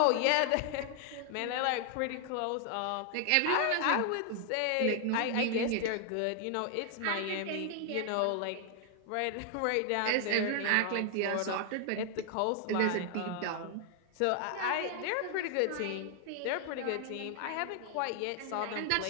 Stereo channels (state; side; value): different; both; correlation 0.00